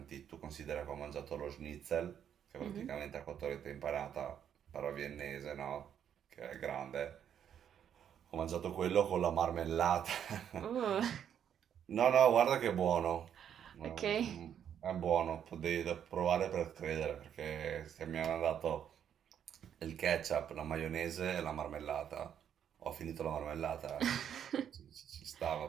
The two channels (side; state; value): left; quieter; 9.0 dB